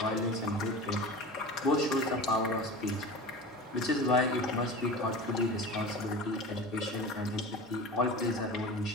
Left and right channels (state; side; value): normal; both; correlation 0.33